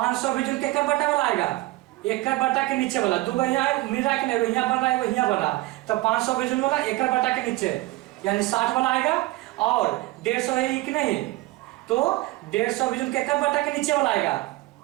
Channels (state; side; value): quieter; left; 19.2 dB